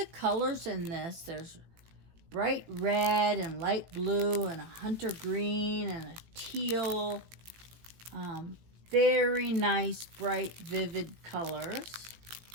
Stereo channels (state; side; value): late; left; 18 ms